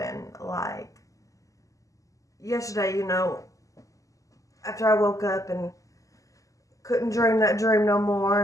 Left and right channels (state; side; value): late; right; 0.16 ms